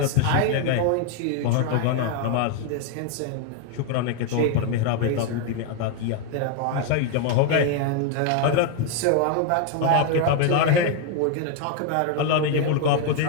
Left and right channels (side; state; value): both; different; correlation 0.01